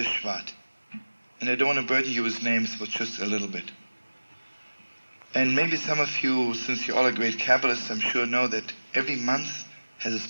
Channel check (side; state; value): both; inverted; correlation -1.00